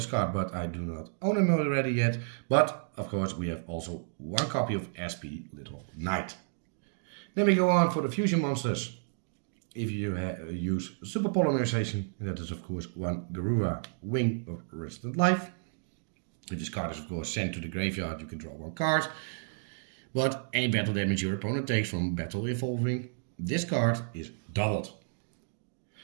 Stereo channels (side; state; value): left; silent; digital silence